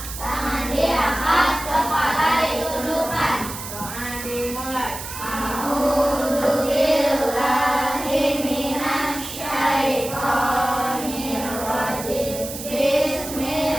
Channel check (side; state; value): right; noise; hiss, 9 dB below the sound